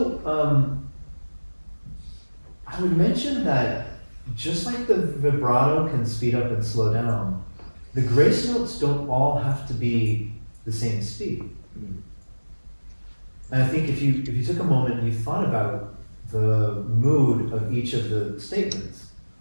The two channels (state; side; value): inverted; both; correlation -1.00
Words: I would mention that just like the vibrato can speed up and slow down, the grace notes don't all have to be the same speed. And I think if you took a moment and you thought about the mood of each of the statements,